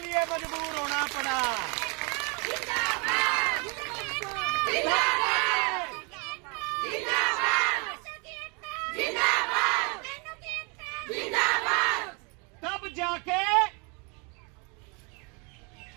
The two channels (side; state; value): left; quieter; 32.5 dB